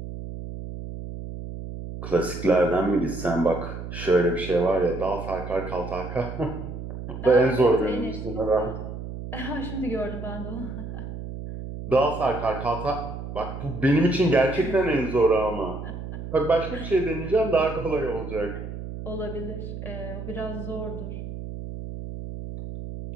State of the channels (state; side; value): noise; right; hum, 8 dB below the sound